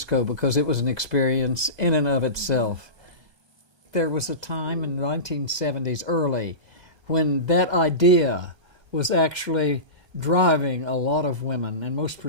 because it was an experience in and of itself. There was a time in the 1970s early when that idea was actually driving a lot of women, and most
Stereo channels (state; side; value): late; left; 1.2 ms